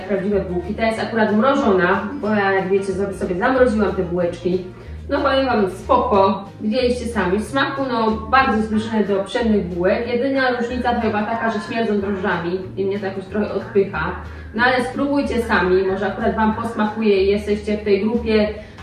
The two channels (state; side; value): identical; both; correlation 1.00